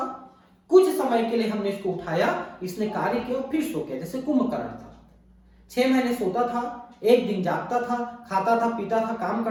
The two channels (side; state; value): both; identical; correlation 1.00